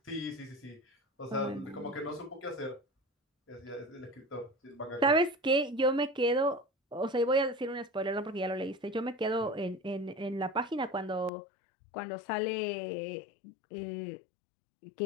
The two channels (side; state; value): right; drops out; at 11.3 s